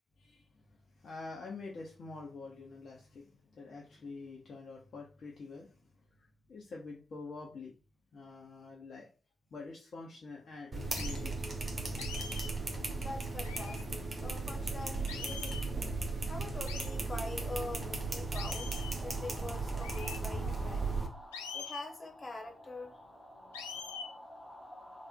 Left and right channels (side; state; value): both; normal; correlation 0.79